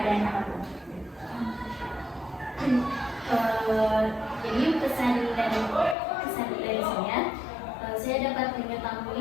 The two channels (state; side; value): drops out; right; at 6.0 s